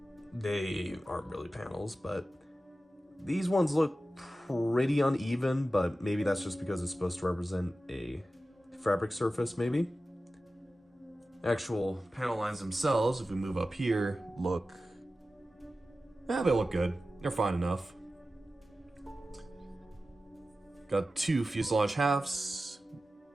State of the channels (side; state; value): both; normal; correlation 0.94